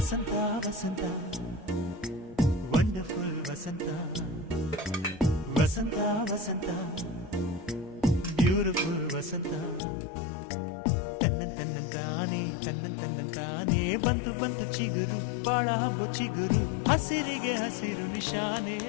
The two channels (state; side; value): drops out; right; at 9.8 s